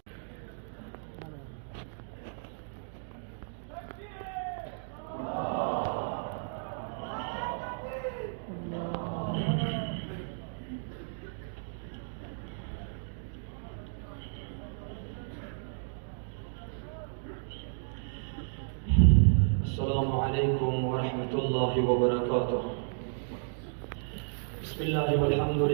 السلام عليكم ورحمة الله وبركاته. بسم الله والحمد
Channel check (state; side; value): silent; left; digital silence